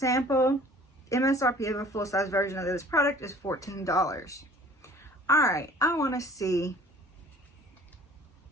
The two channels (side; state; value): both; normal; correlation 0.50